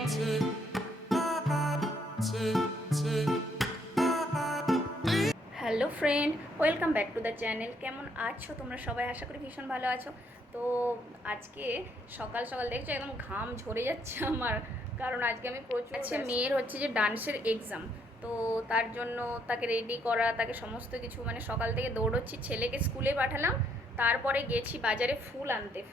friend, welcome back to the channel. কেমন আছো তোমরা সবাই? আশা করি ভীষণ ভালো আছো। তো আজকে সকাল সকাল দেখছো একদম ঘাম ঝরে যাচ্ছে আমার, কারণ আজকে আমি প্রচুর মেয়ের হচ্ছে যে ডান্সের এক্সাম। তো তার জন্য তাকে রেডি করা, তাকে সমস্ত কিছু মানে সকাল থেকে দৌড়চ্ছি, ছেলেকে স্কুলে পাঠালাম, তারপরে গেছি বাজারে ফুল আনতে,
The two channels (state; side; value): normal; both; correlation 0.71